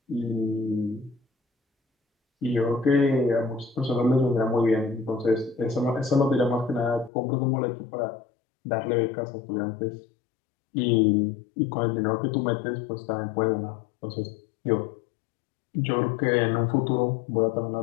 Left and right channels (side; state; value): right; drops out; at 7.1 s